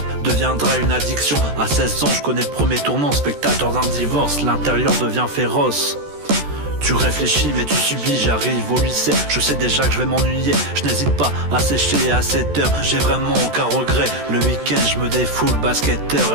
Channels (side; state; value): left; late; 14 ms